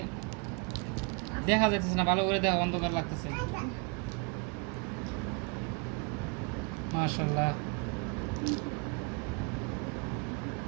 দেখা যাইতেছে না ভালো করে, দেখা অন্ধকার লাগতেছে। মাশাআল্লাহ,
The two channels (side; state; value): left; quieter; 33.5 dB